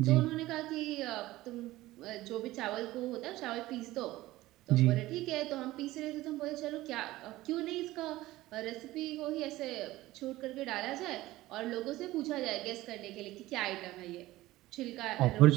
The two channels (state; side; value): quieter; left; 17.3 dB